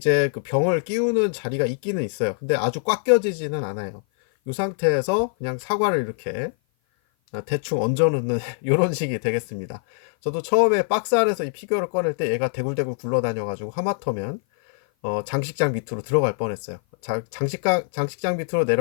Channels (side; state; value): right; silent; 56 dB below the other